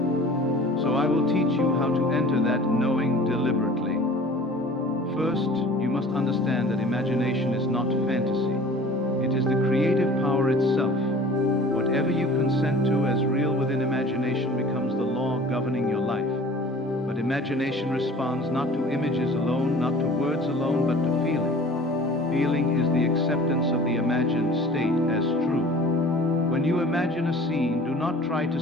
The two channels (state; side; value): normal; both; correlation 0.45